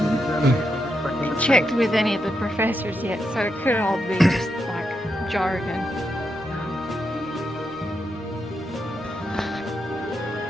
Checked with any of the professors yet, so it could all be just like jargon.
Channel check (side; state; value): both; normal; correlation 0.84